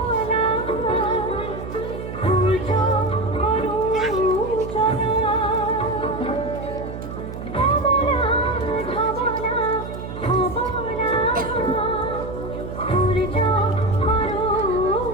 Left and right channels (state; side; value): noise; right; hum, 9 dB below the sound